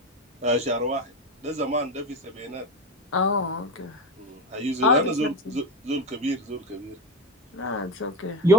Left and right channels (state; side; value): normal; both; correlation 0.22